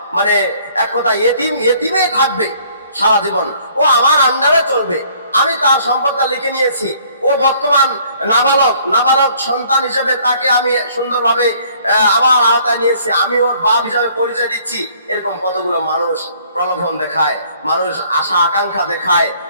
মানে এক কথা এতিমেই থাকবে সারা জীবন, ও আমার আন্ডারে চলবে, আমি তার সম্পদটা লিখে নিয়েছি, ও বর্তমান নাবালক সন্তান হিসেবে তাকে আমি সুন্দরভাবে আমার আওতায় নিয়েছি, আমি ওর বাপ হিসাবে পরিচয় দিচ্ছি। এরকম কতগুলো মানুষ প্রলোভন দেখায়, মানুষ আশা আকাঙ্ক্ষা দেখায়,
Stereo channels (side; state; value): both; inverted; correlation -0.59